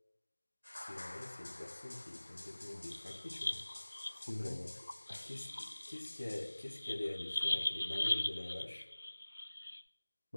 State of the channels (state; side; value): inverted; both; correlation -1.00